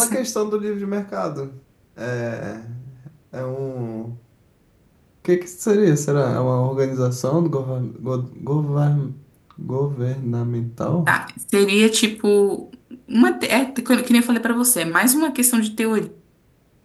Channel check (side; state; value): both; identical; correlation 1.00